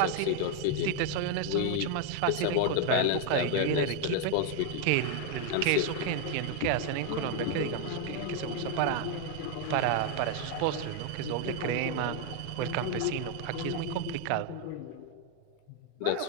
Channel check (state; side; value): different; both; correlation 0.01